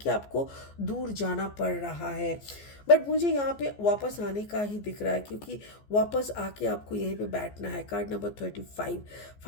आपको दूर जाना पड़ रहा है। बट मुझे यहाँ पे वापस आने का ही दिख रहा है, क्योंकि वापस आके आपको यहीं पे बैठना है। Card number 35,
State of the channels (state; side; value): late; right; 14 ms